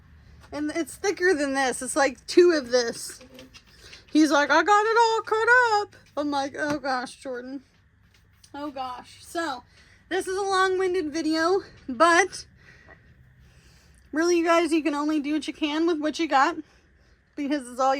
and it's thicker than this. It's like 2 of this. He's like, I got it all cut up. I'm like, oh gosh, Jordan. Oh gosh. So, this is a long-winded video, but really, you guys, you can only do what you can with what you got, because it's all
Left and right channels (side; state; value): both; identical; correlation 1.00